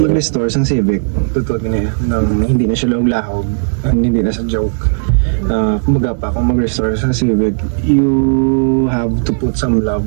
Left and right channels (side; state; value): left; silent; digital silence